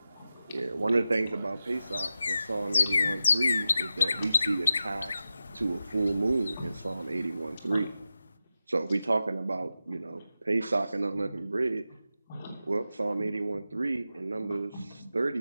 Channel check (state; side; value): inverted; both; correlation -0.92